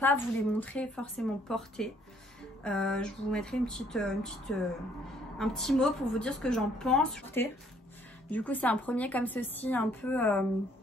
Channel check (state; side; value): normal; both; correlation 0.64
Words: vous les montrer forcément portés. Je vous mettrai un petit mot pour vous dire ce que j'en pense. Du coup, c'est un premier comme ceci, un peu...